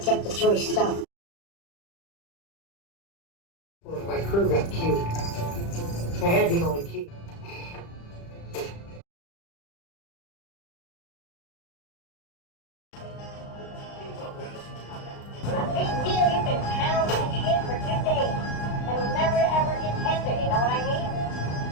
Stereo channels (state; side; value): late; right; 35 ms